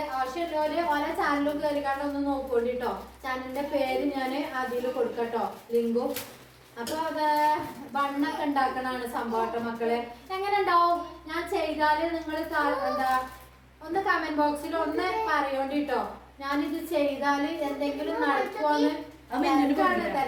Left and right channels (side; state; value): both; identical; correlation 1.00